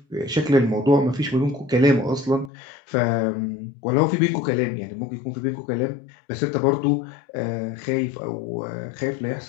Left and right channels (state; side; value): drops out; right; at 2.5 s